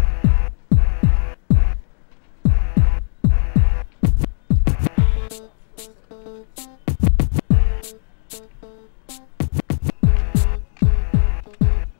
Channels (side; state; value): right; silent; 67 dB below the other